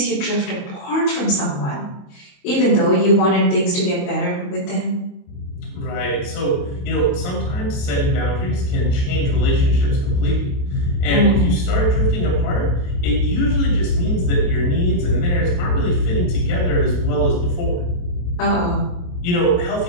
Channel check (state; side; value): late; right; 28 ms